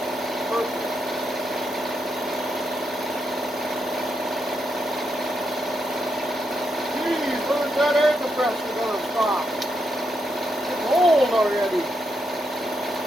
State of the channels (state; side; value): normal; both; correlation 0.82